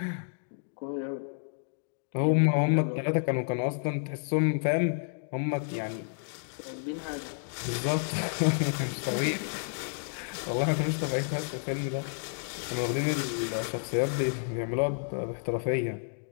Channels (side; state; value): right; silent; digital silence